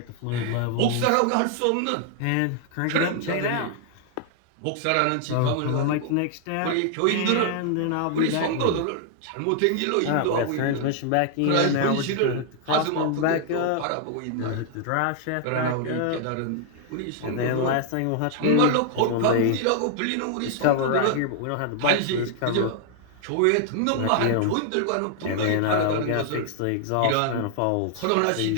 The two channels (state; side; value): different; both; correlation 0.00